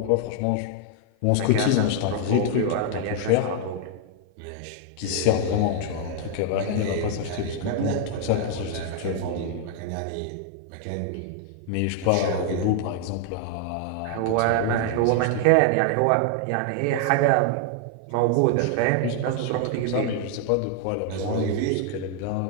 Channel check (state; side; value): different; both; correlation 0.00